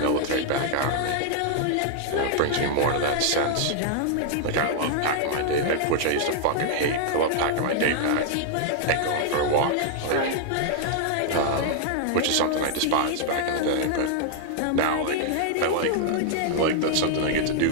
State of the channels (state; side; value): different; both; correlation 0.00